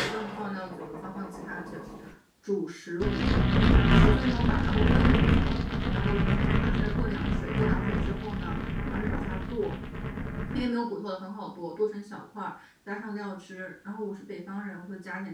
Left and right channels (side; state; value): both; identical; correlation 1.00